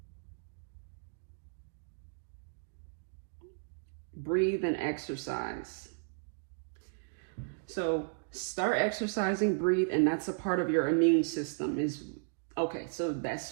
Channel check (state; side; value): silent; left; digital silence